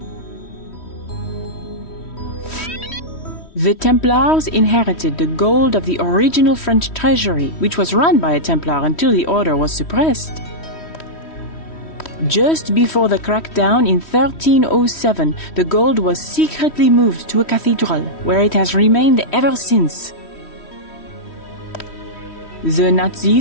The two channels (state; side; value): late; right; 3.1 ms